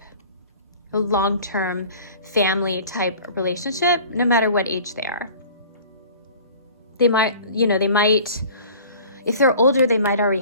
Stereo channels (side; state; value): both; inverted; correlation -0.45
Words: a long-term family type relationship, no matter what age they are. They might, you know, if they're older, they might already